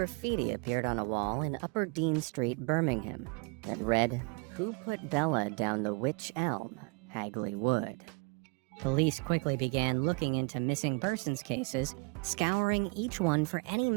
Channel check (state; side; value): quieter; left; 31.3 dB